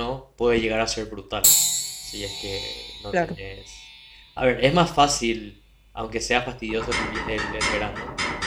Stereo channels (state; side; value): identical; both; correlation 1.00